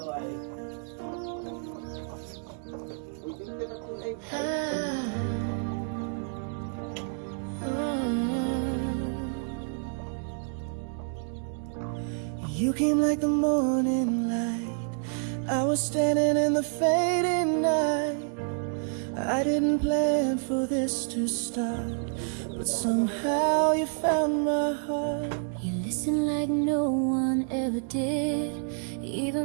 came like the morning light. I was standing in the fading night. I didn't plan for this to start, but somehow you found my heart. You listen like no one ever did.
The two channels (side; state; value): left; silent; 59 dB below the other